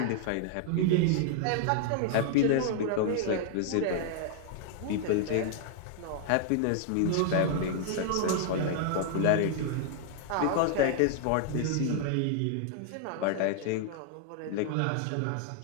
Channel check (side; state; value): both; different; correlation 0.00